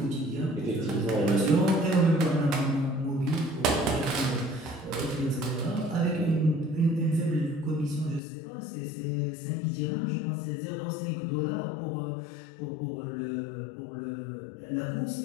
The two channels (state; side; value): drops out; right; at 8.2 s